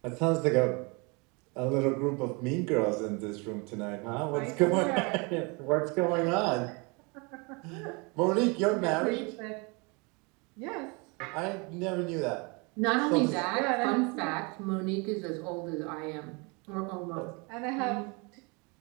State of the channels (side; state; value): left; quieter; 30.1 dB